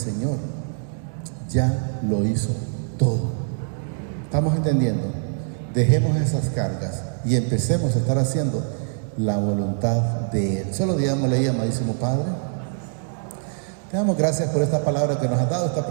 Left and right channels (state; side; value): silent; left; digital silence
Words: ya lo hizo todo. ¿Estamos entendiendo? Dejemos esas cargas y empecemos a estar haciendo la voluntad de Él. Solo digámosle, amadísimo Padre, te damos gracias por esta palabra que nos has dado esta